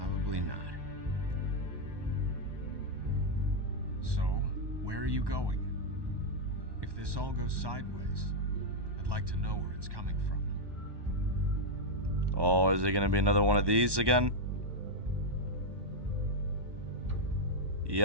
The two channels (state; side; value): late; left; 1.1 ms